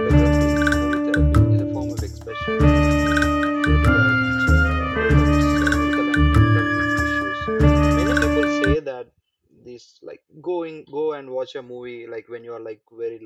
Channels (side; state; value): both; identical; correlation 1.00